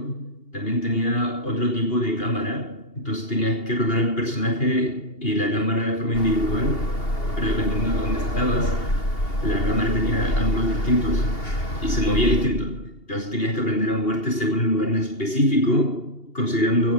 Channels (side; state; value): right; late; 2.8 ms